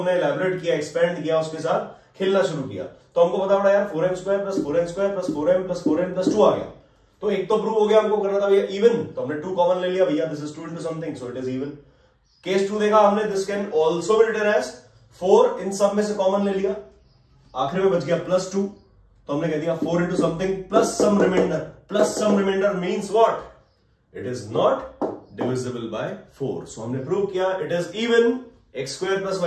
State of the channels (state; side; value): identical; both; correlation 1.00